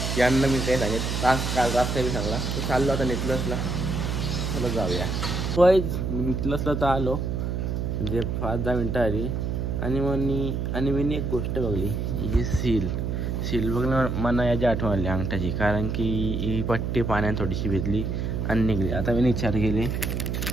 यांना मी काही सांगितलं काल रास्ता मी सांगला. तर चाललो आता निघलंसला, चला जाऊया. मी निघलंसला तर आलो म्हणजे 5-10 मिनटं आली आणि मी एक गोष्ट बघली, ही सील बघलं मला याची आठवण आली अंगठाची. कारण की ही पट्टी पाण्यात थोडीशी भिजली आणि निघली. आता मी विचार केली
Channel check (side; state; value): right; noise; hum, 1 dB below the sound